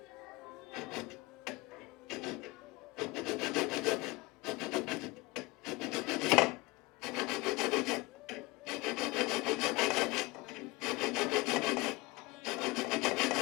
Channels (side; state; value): right; quieter; 23.7 dB